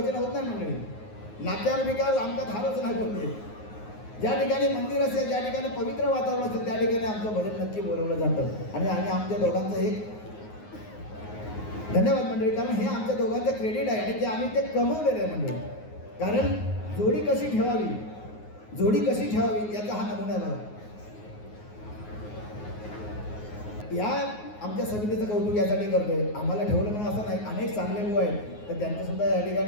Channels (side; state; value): right; late; 9.5 ms